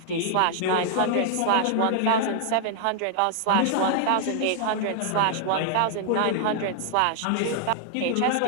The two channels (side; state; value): both; different; correlation 0.00